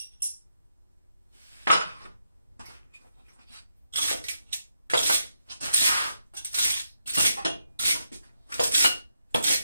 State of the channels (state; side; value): inverted; both; correlation -0.82